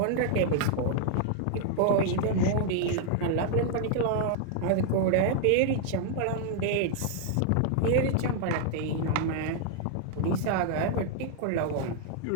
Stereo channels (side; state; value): both; different; correlation 0.00